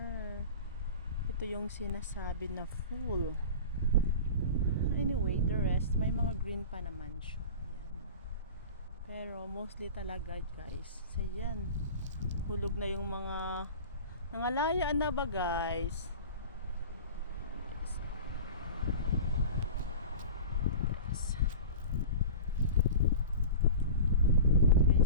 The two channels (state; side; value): inverted; both; correlation -0.34